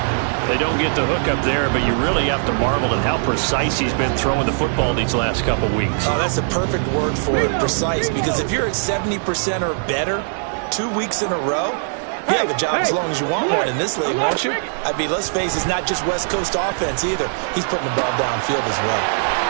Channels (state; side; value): silent; left; digital silence